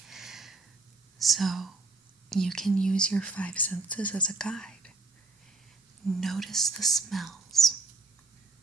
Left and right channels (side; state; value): left; quieter; 3.6 dB